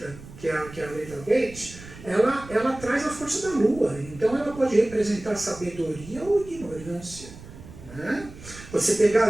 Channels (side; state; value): right; noise; rumble, 17 dB below the sound